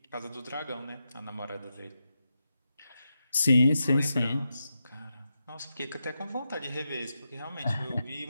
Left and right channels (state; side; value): inverted; both; correlation -0.88